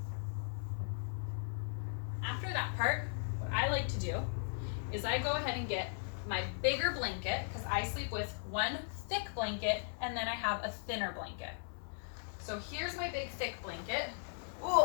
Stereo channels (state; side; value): silent; right; 53 dB below the other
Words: after that part, what I like to do is I go ahead and get my bigger blanket, because I sleep with one thick blanket and then I have a thinner blanket. So here's my big thick blanket. Ooh,